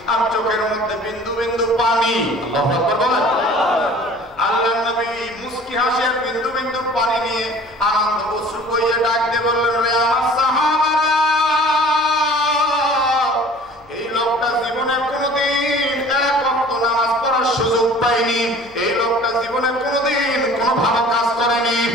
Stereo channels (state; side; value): noise; right; hum, 29 dB below the sound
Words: আর চোখের মধ্যে বিন্দু বিন্দু পানি। আল্লাহু আকবার বলেন। আল্লাহর নবী মুস্কি হাসি আর বিন্দু বিন্দু পানি নিয়ে আনন্দ অশ্রু বইয়ে ডাক দিয়ে বললেন, রে আমার সাহাবারা, এই লোকটা জীবনে কোনোদিন এক ওয়াক্ত নামাজ পড়ার সুযোগ পায়নি, এই লোকটা জীবনে কোনোদিন কোনো ভালো কাজ করেনি,